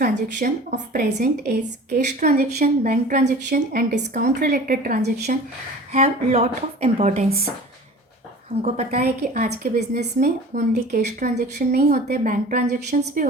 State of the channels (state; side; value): normal; both; correlation 0.41